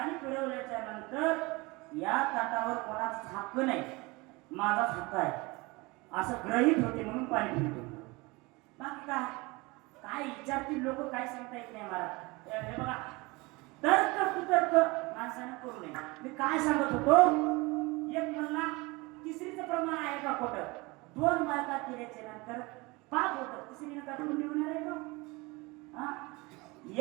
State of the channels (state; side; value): quieter; left; 24.5 dB